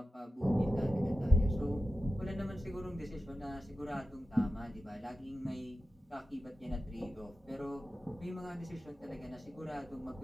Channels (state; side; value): normal; both; correlation 0.93